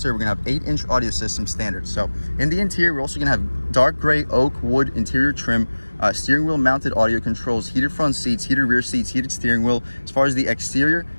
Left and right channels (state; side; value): inverted; both; correlation -1.00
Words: We're going to have 8-inch audio system standard. So in the interior, we're also going to have dark gray oak wood interior trim, steering wheel mounted audio controls, heated front seats, heated rear seats, heated steering wheel. As far as the exterior,